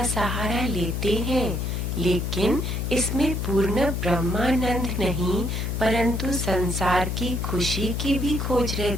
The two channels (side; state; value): left; noise; hum, 1 dB below the sound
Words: सहारा लेते हैं लेकिन इसमें पूर्ण ब्रह्मानंद नहीं परंतु संसार की खुशी की भी खोज